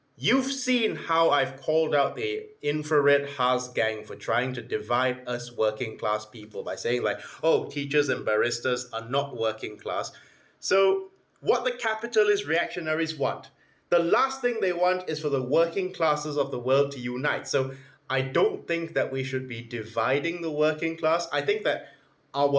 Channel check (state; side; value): identical; both; correlation 1.00